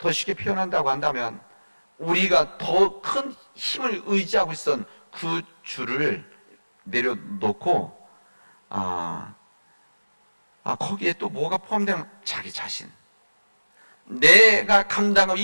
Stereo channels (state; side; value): inverted; both; correlation -1.00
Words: 쉽게 표현한다고 한다면 우리가 더 큰 힘을 의지하고 있었던 그 줄을 내려놓고 거기에 또 뭐가 포함되면 자기 자신, 내가 감당하고